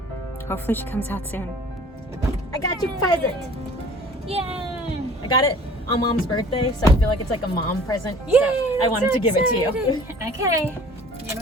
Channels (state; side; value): normal; both; correlation 0.49